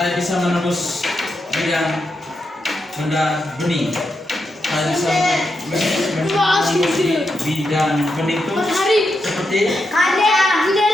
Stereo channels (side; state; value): both; normal; correlation 0.85